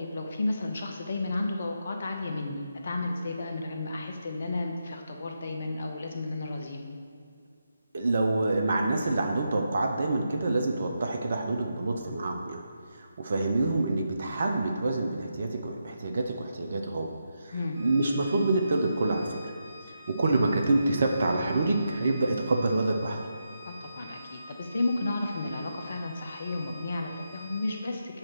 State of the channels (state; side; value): inverted; both; correlation -0.85